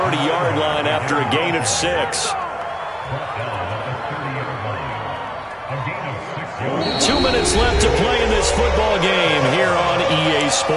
line after a gain of 6. 2 minutes left to play in this football game here on EA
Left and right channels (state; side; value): identical; both; correlation 1.00